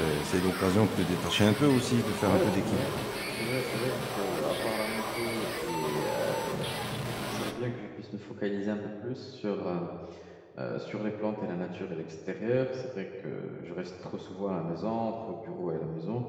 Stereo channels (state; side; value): identical; both; correlation 1.00